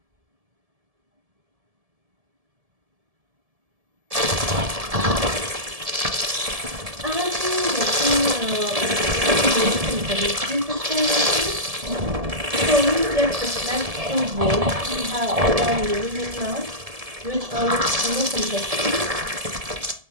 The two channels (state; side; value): late; left; 1.7 ms